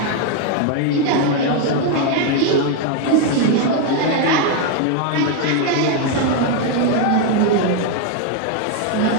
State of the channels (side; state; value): both; different; correlation 0.01